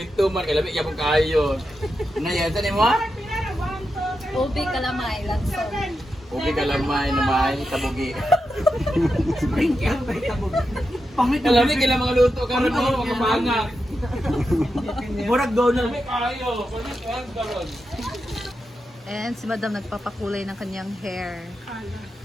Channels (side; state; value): both; normal; correlation 0.88